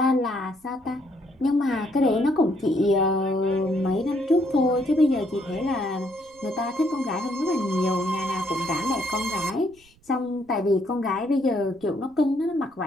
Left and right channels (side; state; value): right; noise; rumble, 30 dB below the sound